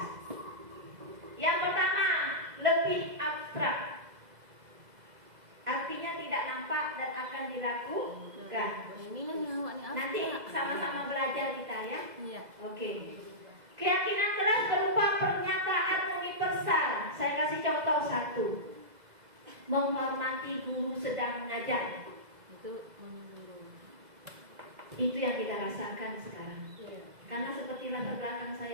Yang pertama, lebih abstrak. Artinya tidak nampak dan akan dilakukan. Nanti sama-sama belajar kita ya. Iya. Oke. Keyakinan kelas berupa pernyataan universal. Saya kasih contoh satu. Menghormati guru sedang mengajar. Itu yang kita rasakan sekarang. Karena seperti latar belakang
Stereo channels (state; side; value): late; left; 2.0 ms